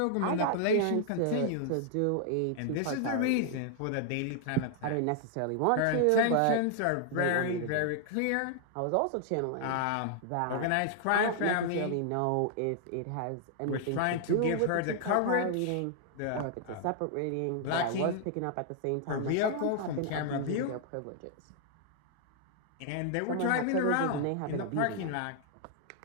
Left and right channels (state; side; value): different; both; correlation 0.00